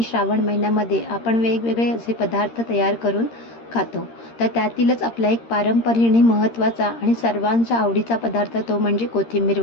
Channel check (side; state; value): right; late; 13 ms